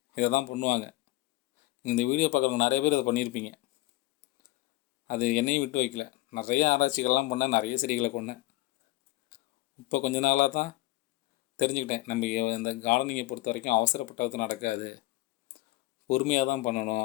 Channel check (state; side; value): quieter; right; 18.8 dB